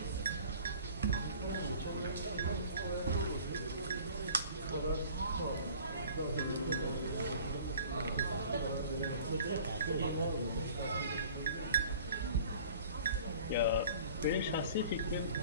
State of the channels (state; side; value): inverted; both; correlation -0.47